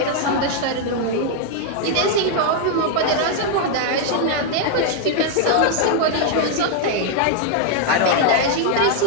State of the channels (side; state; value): both; different; correlation 0.00